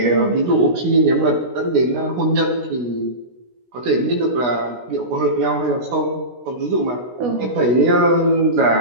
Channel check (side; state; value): left; late; 16 ms